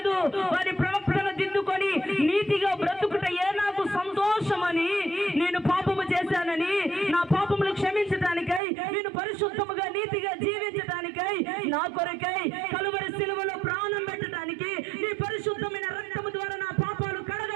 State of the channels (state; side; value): drops out; left; at 8.6 s